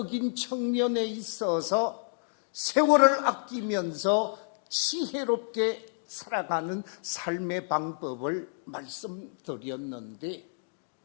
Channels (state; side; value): silent; right; digital silence